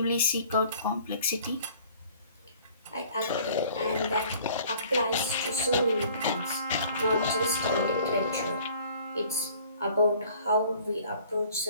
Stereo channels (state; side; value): inverted; both; correlation -0.52